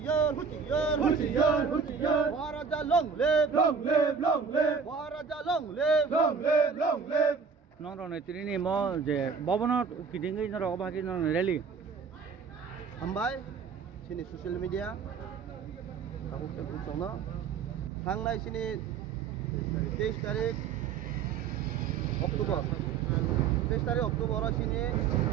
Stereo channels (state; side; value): quieter; left; 5.9 dB